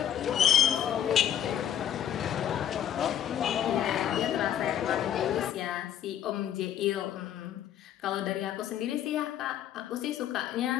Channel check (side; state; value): right; quieter; 10.1 dB